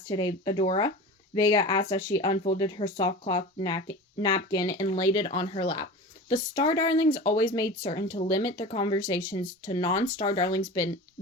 today, Adora?" Vega asked as she unfolded her soft-cloth napkin and laid it on her lap. The Star Darlings always made certain to limit their conversations to non-Star Darlings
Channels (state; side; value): normal; both; correlation 0.33